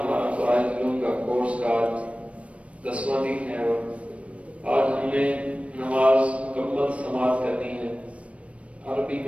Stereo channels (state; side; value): late; left; 0.063 ms